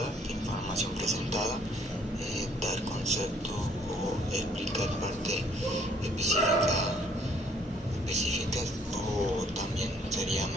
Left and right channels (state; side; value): normal; both; correlation 0.63